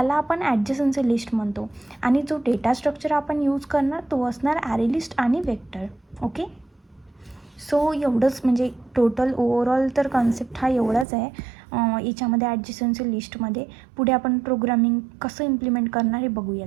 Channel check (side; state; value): left; drops out; at 11.1 s